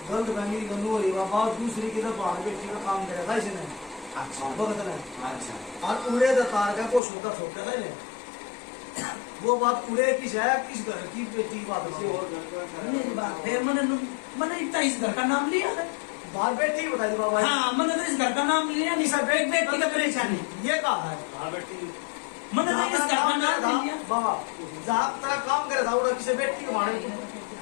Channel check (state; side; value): drops out; right; at 7.0 s